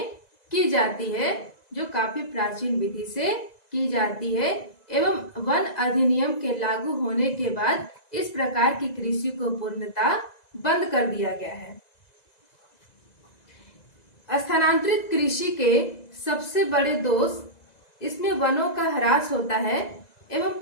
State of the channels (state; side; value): late; right; 2.0 ms